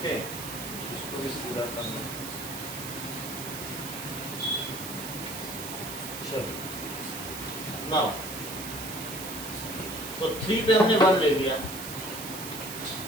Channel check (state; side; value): noise; right; hiss, 8 dB below the sound